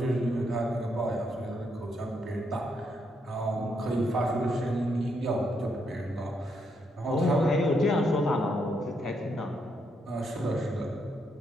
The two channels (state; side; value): normal; both; correlation 0.77